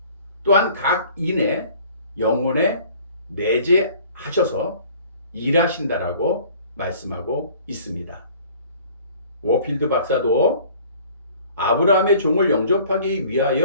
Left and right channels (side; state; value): both; inverted; correlation -0.51